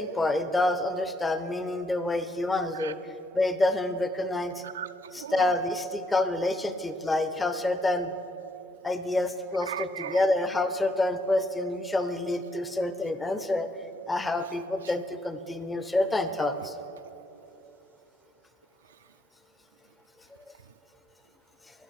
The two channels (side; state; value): both; normal; correlation 0.73